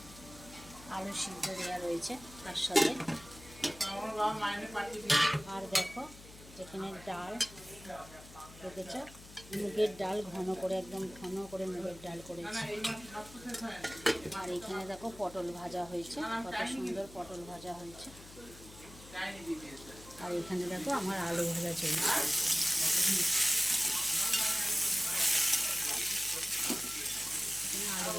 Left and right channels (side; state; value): left; noise; hum, 18 dB below the sound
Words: আলু সিদ্ধ দেওয়া রয়েছে তার সাথে। আর দেখো এখানে ডাল দেখেছ, মুগের ডাল ঘন করে, একদম ঘন করে মুগের ডাল করেছি। আর এখানে দেখো পটল ভাজা হয়েছে, কত সুন্দর পটল ভাজা হয়েছে। আর এখানে দেখো আমার আলু ভাজা চলছে। আলু